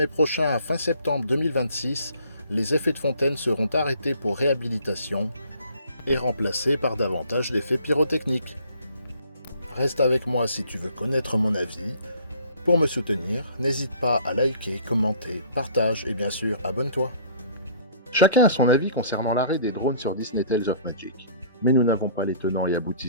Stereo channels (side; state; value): both; inverted; correlation -0.54